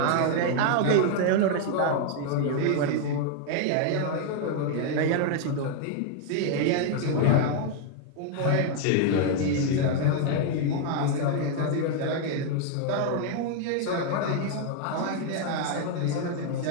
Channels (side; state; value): both; different; correlation 0.00